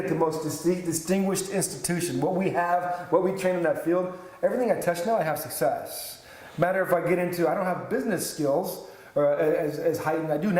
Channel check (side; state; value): both; identical; correlation 1.00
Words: the most distinguished institution. What we have, what we train in that field, everything I touch now, I have success. Matter if I get into, I don't have business skills as heightened. I do